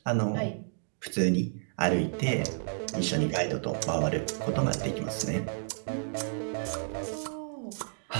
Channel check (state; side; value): silent; left; digital silence